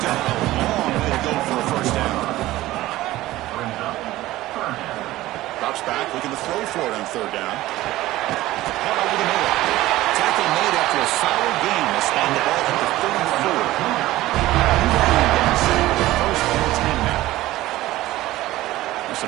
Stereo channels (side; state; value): left; quieter; 16.5 dB